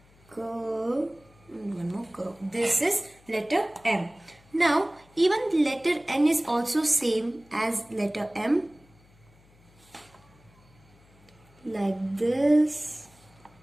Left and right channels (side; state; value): left; noise; hum, 29 dB below the sound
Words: and one more curve. This is letter M. Now even letter N is also same as letter M. Like this.